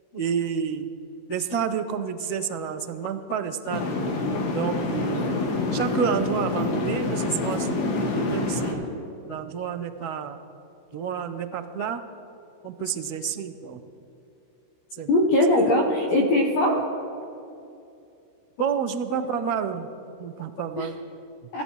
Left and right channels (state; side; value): late; right; 16 ms